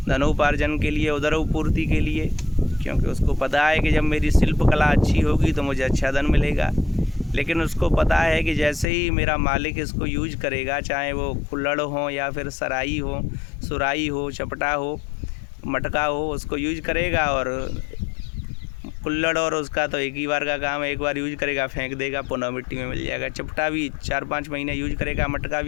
धनोपार्जन के लिए, उदरोपूर्ति के लिए, क्योंकि उसको पता है कि जब मेरी शिल्प कला अच्छी होगी तो मुझे अच्छा धन मिलेगा। लेकिन उसको पता है कि जैसे ही मेरा मालिक इसको यूज करेगा, चाहे वो कुल्हड़ हो या फिर सराई हो, सुराई हो, चपटा हो, मटका हो, उसको यूज करेगा और कुल्हड़ और उसका तो एक ही बार का काम है, एक बार यूज करेगा फेंक देगा, पुनः मिट्टी में मिल जाएगा। चपटा भी 4-5 महीने यूज करेगा, मटका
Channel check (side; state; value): right; drops out; at 8.8 s